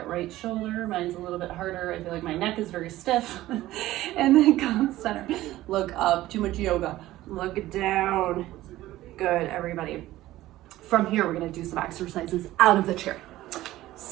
right shoulder. Mine's a little bit harder. I feel like my neck is very stiff. And then come center. Look up. Too much yoga. Look down. Good, everybody. From here, we're going to do some exercises out of the chair.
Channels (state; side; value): quieter; left; 15.7 dB